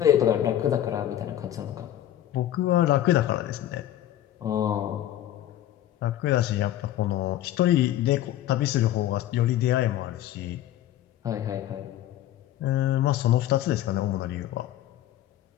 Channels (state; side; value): quieter; right; 12.5 dB